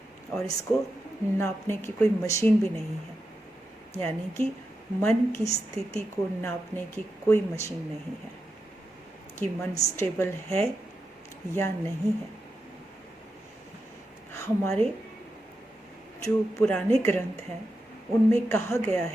और इसको नापने की कोई मशीन भी नहीं है, यानी कि मन की स्थिति को नापने की कोई मशीन नहीं है कि मन स्टेबल है या नहीं है। हमारे जो पुराने ग्रंथ हैं उनमें कहा गया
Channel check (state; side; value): normal; both; correlation 0.88